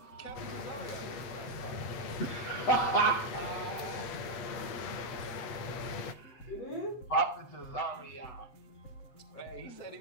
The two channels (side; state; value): right; late; 8.1 ms